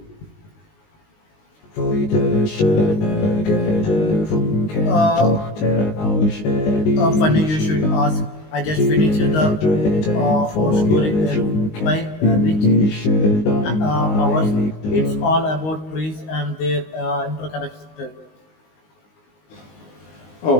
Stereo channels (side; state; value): right; late; 19 ms